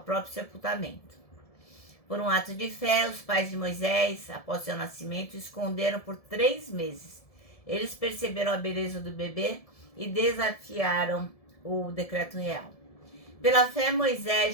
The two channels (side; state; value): right; late; 1.7 ms